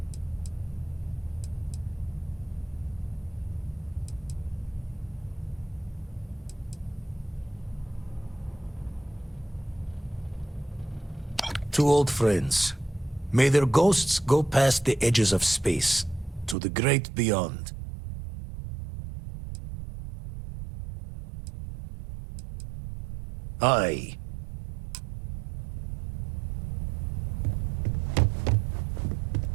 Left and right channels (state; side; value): drops out; left; at 16.6 s